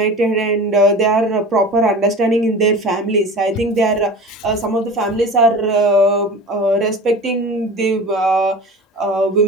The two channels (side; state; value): both; normal; correlation 0.35